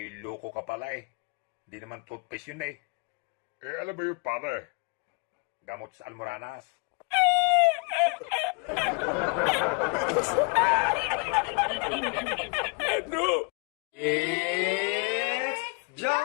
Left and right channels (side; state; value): right; quieter; 34.3 dB